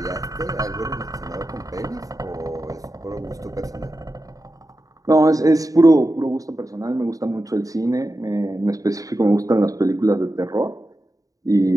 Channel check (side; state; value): left; late; 0.17 ms